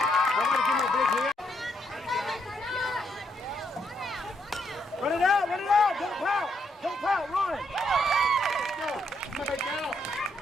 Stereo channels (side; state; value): both; normal; correlation 0.76